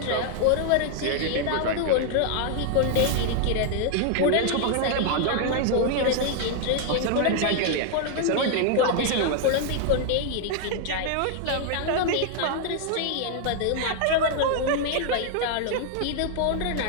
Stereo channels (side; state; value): both; different; correlation 0.00